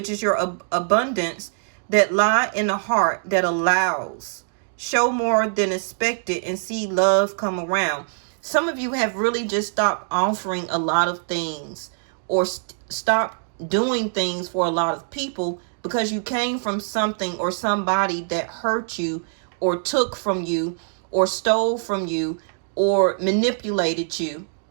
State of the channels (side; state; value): left; silent; digital silence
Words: is your abundance that lie in the heart that allows. Show more than expected and see love come around. Some of you have really just stopped offering a lot of things or stopped doing things for a lot of people because you came from something or somebody that hurt you or took from you or stole from you or manipulated you